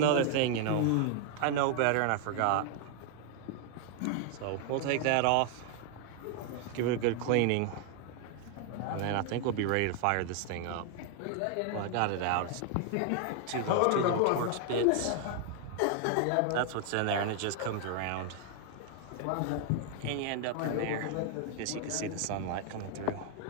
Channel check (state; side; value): different; both; correlation 0.00